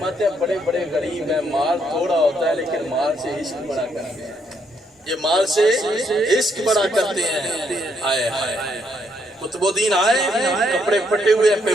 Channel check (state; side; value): normal; both; correlation 0.73